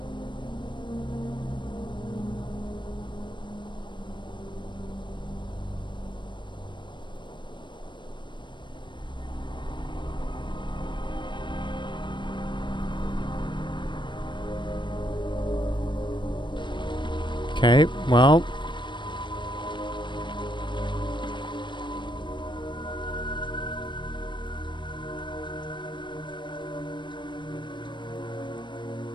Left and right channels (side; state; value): right; late; 0.22 ms